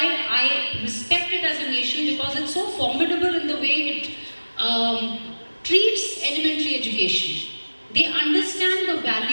I respect it as a nation, because it's so formidable in the way it treats elementary education. They understand the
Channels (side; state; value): both; inverted; correlation -1.00